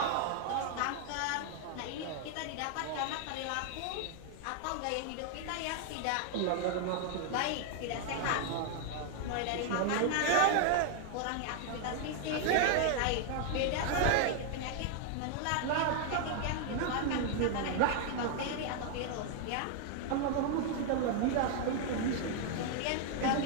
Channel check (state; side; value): different; both; correlation 0.00